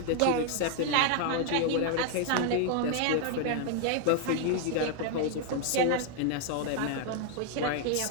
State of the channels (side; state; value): both; different; correlation 0.00